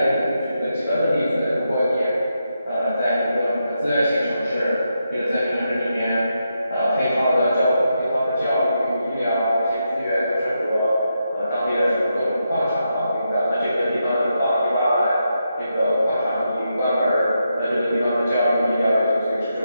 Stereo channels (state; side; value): inverted; both; correlation -0.84